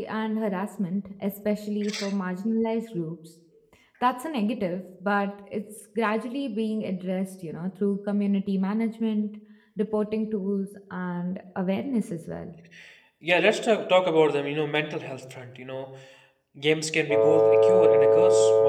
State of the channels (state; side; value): identical; both; correlation 1.00